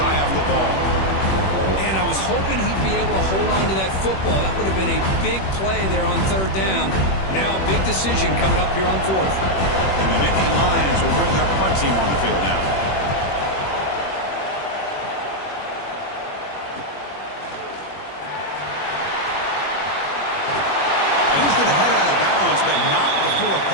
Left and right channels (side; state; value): right; late; 21 ms